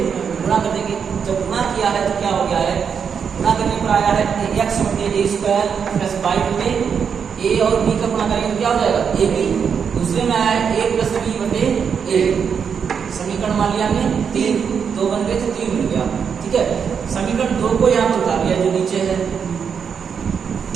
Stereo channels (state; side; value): quieter; left; 6.8 dB